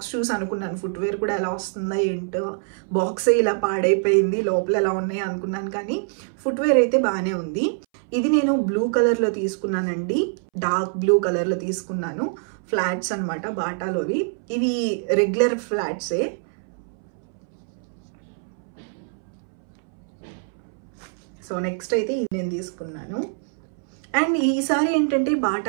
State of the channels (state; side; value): silent; left; 62 dB below the other